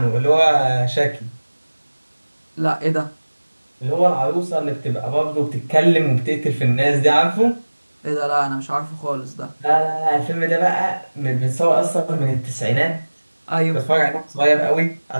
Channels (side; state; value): both; inverted; correlation -1.00